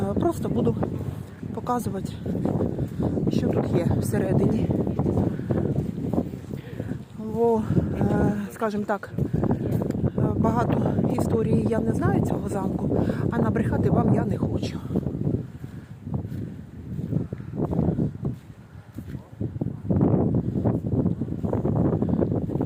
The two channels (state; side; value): identical; both; correlation 1.00